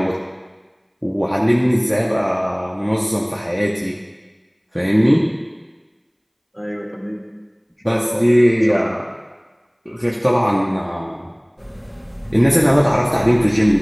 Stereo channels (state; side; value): identical; both; correlation 1.00